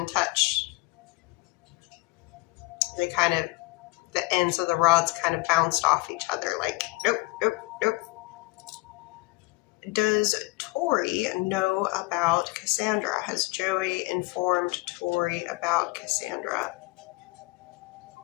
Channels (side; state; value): right; quieter; 24.3 dB